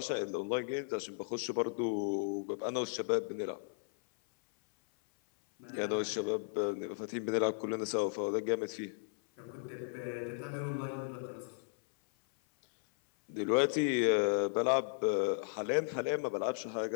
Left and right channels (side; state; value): right; silent; 54 dB below the other